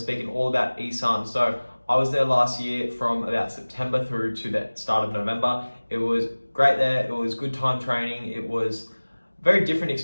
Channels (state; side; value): inverted; both; correlation -1.00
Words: all about Isan. So I was there last year from about September through to the start of November. It was great there. It was good time training. It was very different